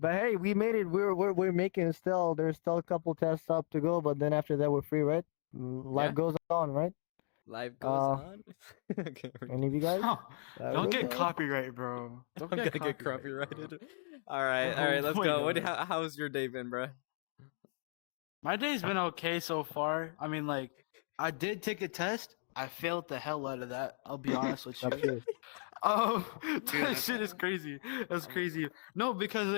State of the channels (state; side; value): silent; right; 54 dB below the other